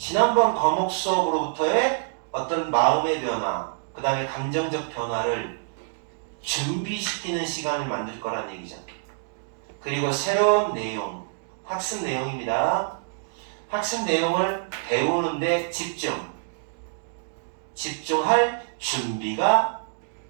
과목 수업으로부터의 어떤 마음의 변화, 그 다음에 감정적 변화를 준비시키는 시간을 만들 거란 얘기죠. 그리고 새로운 내용, 학습 내용입니다. 학습 내용을 배우는데 집중할 준비가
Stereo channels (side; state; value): left; silent; digital silence